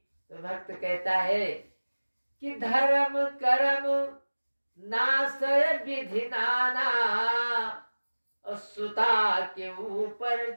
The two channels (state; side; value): inverted; both; correlation -1.00